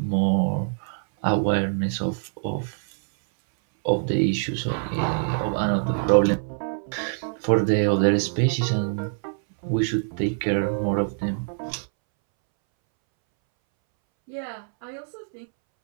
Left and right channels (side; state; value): left; silent; 62 dB below the other